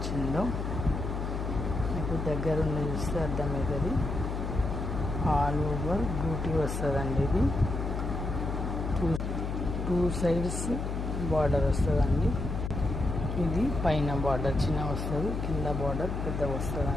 మీకు దగ్గర ఉండి చూస్తే అర్థమవుతుంది. ఆల్ ఓవర్ బ్యూటీ వస్తుందండి. ఇది టూ సైడ్స్ బార్డర్ వస్తుందండి. ఇది పైన బార్డర్ చిన్న వస్తుంది, కింద బార్డర్ పెద్ద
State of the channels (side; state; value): left; noise; hum, 3 dB below the sound